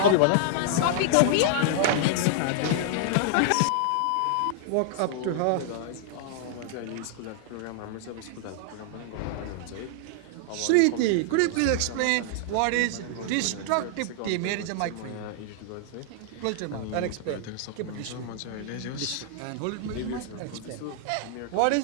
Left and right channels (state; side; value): different; both; correlation -0.01